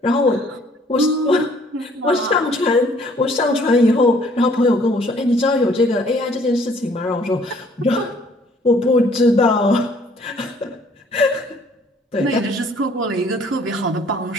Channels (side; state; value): both; normal; correlation 0.60